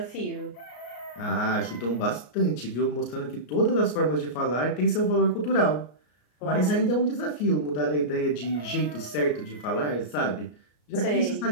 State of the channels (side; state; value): right; late; 33 ms